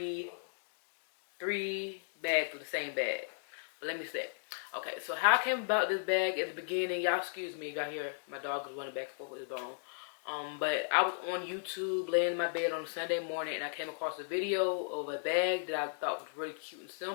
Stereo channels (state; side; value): silent; right; digital silence